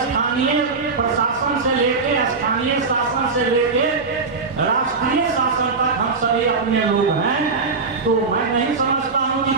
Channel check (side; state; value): left; quieter; 4.4 dB